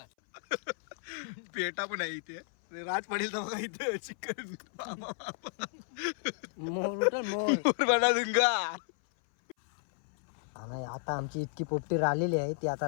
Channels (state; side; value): silent; right; 56 dB below the other